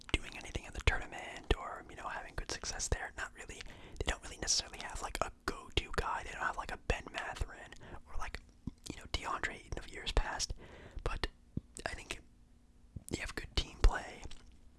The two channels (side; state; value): both; identical; correlation 1.00